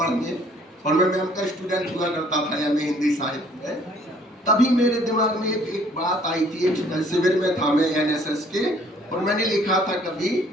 और मैं मैम का स्टूडेंट हुआ करता था एमए हिंदी साहित्य में, तभी मेरे दिमाग में एक बात आई थी। एक शिविर में था मैं एनएसएस के, और मैंने लिखा था कभी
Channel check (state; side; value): normal; both; correlation 0.59